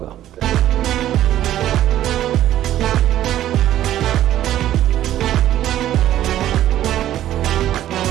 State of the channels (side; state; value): left; quieter; 12.6 dB